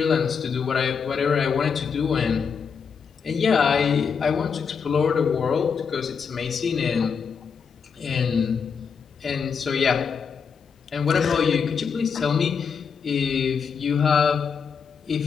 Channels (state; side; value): quieter; right; 6.2 dB